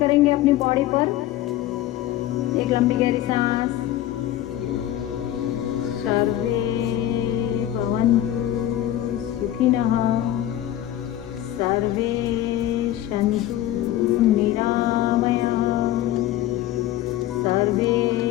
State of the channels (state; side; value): quieter; right; 13.2 dB